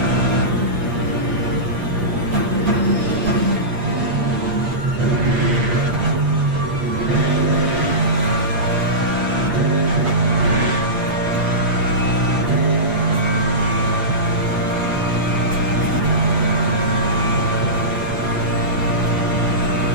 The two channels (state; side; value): late; left; 8.4 ms